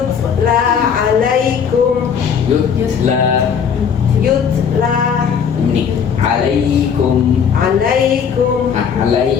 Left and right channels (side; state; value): right; quieter; 7.1 dB